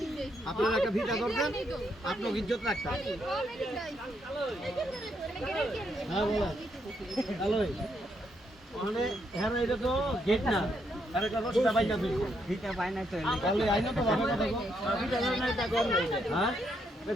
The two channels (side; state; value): both; normal; correlation 0.76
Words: আপনারা একটা ফিতা ধরবেন আপনার ইজ্জত রাখতে হ্যাঁ বলা হ্যালো মানে হ্যাঁ এটা তো গেট না আরে একটা রশিটা বাইনা তুই ফিতা বাইনা তো তাহলে আইনো তো ভাবে কথা কো ফিতা ধরে না তা কর হ্যাঁ